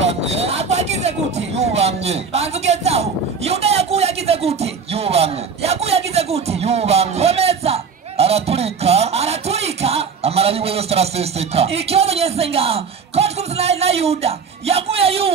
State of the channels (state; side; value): quieter; left; 5.7 dB